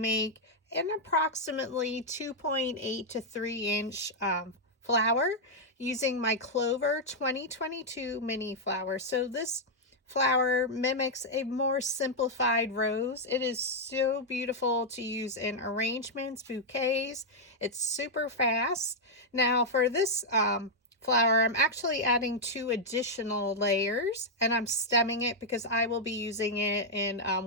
an approximately 2.8 to 3 inch flower using my Clover 2022 mini flower. So this flower mimics a more simplified rose. It is so beautiful to use in arrangements, bouquets. It's super fast. Now for this flower, I'm actually adding 2 additional layers, and I'm stemming it because I will be using it in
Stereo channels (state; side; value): normal; both; correlation -0.03